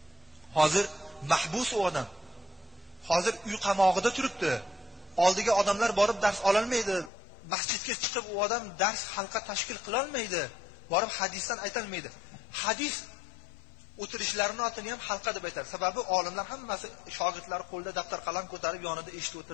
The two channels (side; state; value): right; drops out; at 7.1 s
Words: hozir mahbus u odam. Hozir uy qamog'ida turibdi. Oldiga odamlar borib dars ololmaydi. Masjidga chiqib u odam dars halqa tashkil qila olmaydi. Borib hadisdan aytolmaydi. Hadis o'tirishlarini otini ham halqa deb aytadi. Sababi olimlar hammasi shogirdlari qo'lda daftar qalam ko'tarib yonida eshitib